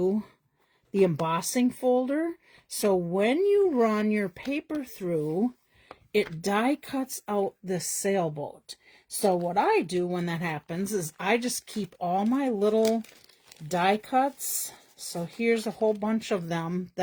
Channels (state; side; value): identical; both; correlation 1.00